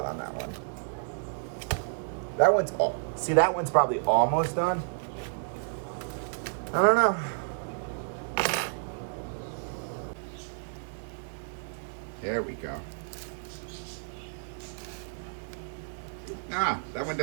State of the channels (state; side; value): silent; left; digital silence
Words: on that one. That one's, see, that one's probably almost done. I don't know. There we go. Ah, that one